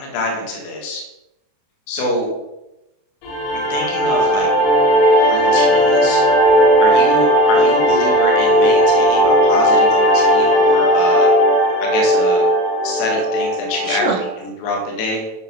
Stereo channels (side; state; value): right; late; 27 ms